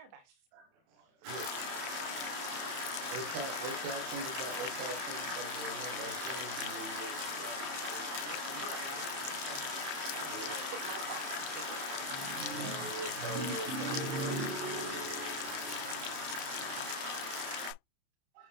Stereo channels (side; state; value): left; late; 30 ms